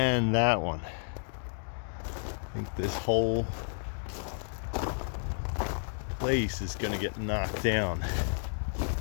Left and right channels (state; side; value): silent; right; digital silence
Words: that one. I think this whole place is gonna get knocked down.